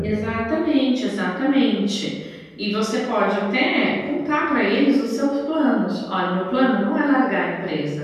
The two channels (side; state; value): both; identical; correlation 1.00